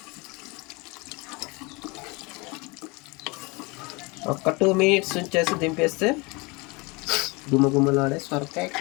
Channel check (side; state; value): right; quieter; 26.9 dB